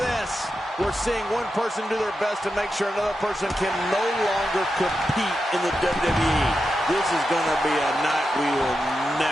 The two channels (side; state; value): both; normal; correlation 0.89